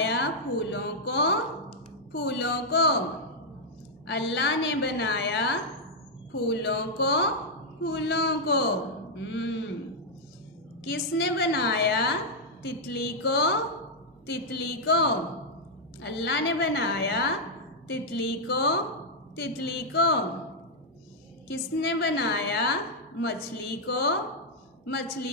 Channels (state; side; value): normal; both; correlation -0.04